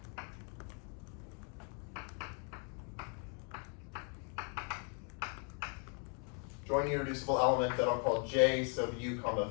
join irreducible element that I'll call J sub U comma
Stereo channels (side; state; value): right; quieter; 38.5 dB